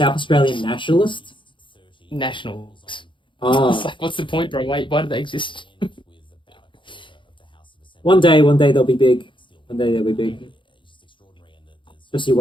Australian nationalist? Nationals. Oh. It's like, what's the point, bro? Why do they exist? One day they'll be big. One day they'll be big. Just you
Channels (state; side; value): late; right; 0.24 ms